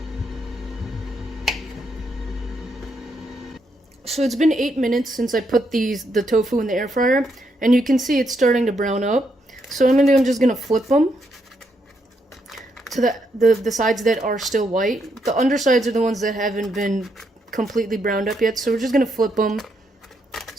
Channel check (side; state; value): both; normal; correlation 0.78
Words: So it's been 8 minutes since I put the tofu in the air fryer, and you can see it's starting to brown up. So what I'm just gonna flip them to the sides that are still white. The undersides are the ones that haven't been completely browned up yet. So we're just gonna flip them